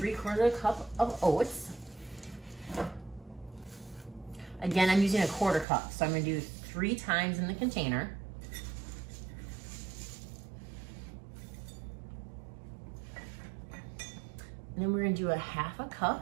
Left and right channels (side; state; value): left; drops out; at 5.7 s